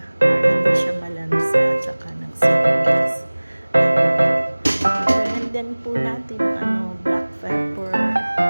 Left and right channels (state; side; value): inverted; both; correlation -1.00